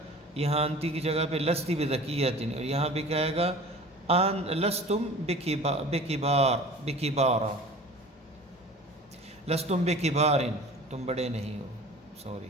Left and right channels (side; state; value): both; normal; correlation 0.41